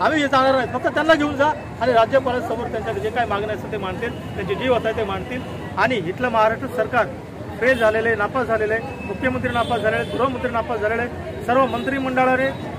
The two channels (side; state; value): both; identical; correlation 1.00